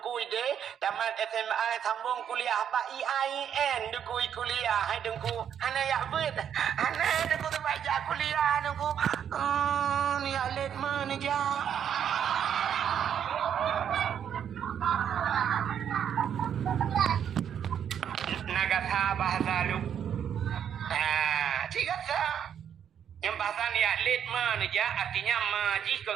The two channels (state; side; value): quieter; left; 8.8 dB